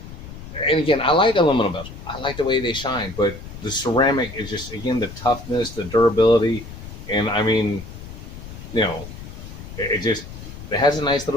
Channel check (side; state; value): left; noise; rumble, 13 dB below the sound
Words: And again, I like aluminum bezel. I like the way they shine, but the ceramic is just, again, the toughness, the durability. And I mean, you know, it has a nice